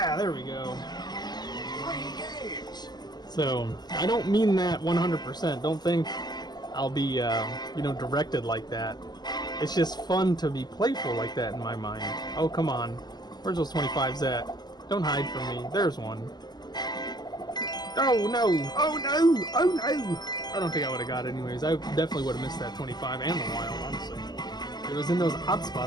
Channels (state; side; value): late; right; 0.20 ms